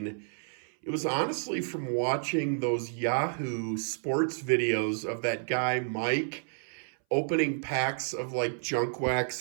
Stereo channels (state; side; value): silent; left; 58 dB below the other